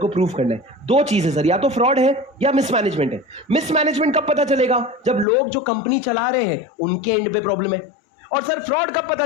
प्रूव करना है। 2 चीज है सर, या तो फ्रॉड है या मिसमैनेजमेंट है। मिसमैनेजमेंट कब पता चलेगा? जब लोग जो कंपनी चला रहे हैं उनके एंड पे प्रॉब्लम है। और सर फ्रॉड कब पता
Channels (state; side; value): drops out; right; at 5.2 s